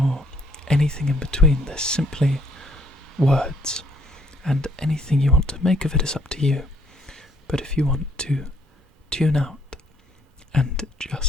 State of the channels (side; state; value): both; normal; correlation 0.65